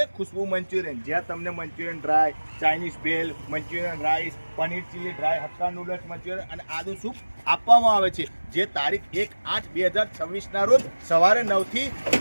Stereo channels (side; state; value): both; inverted; correlation -1.00